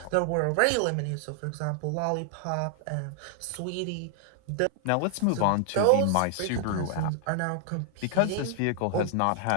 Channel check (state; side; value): different; both; correlation 0.00